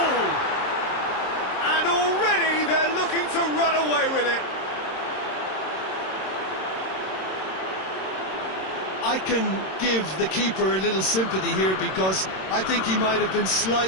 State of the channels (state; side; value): late; right; 26 ms